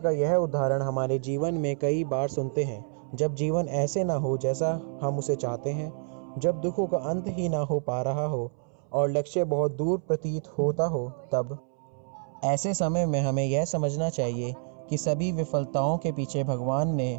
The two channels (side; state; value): left; silent; 59 dB below the other